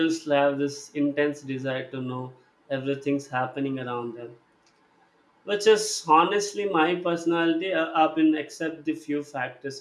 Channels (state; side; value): identical; both; correlation 1.00